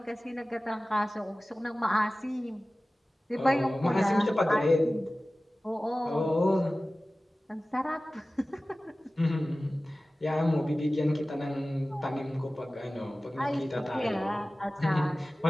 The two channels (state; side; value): normal; both; correlation 0.97